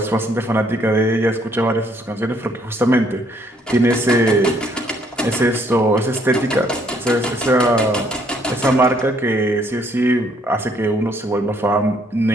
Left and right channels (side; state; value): both; normal; correlation 0.67